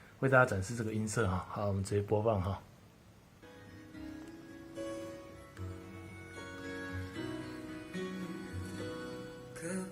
为大家展示这个音色好，我们直接播放告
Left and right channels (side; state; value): both; identical; correlation 1.00